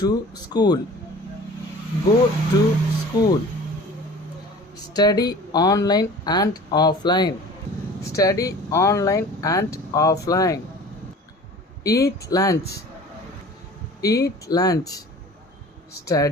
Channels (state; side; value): normal; both; correlation 0.43